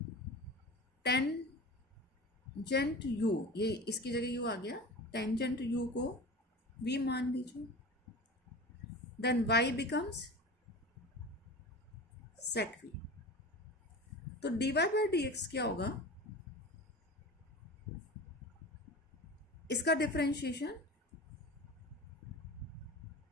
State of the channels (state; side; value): normal; both; correlation 0.33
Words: टेंजेंट u, ये इसकी जगह u आ गया, टेंजेंट u को v मान लीजिए, then y becomes sec v, तो dy by dx क्या होगा, इसका डिफरेंशिएशन,